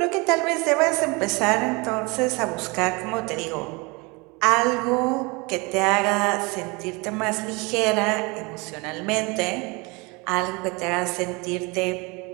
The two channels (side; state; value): left; quieter; 27.5 dB